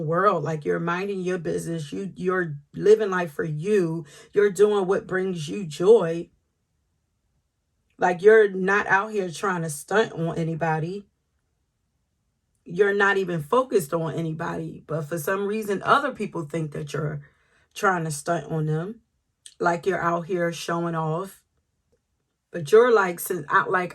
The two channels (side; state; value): both; identical; correlation 1.00